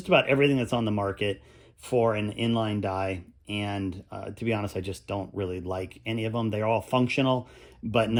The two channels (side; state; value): both; identical; correlation 1.00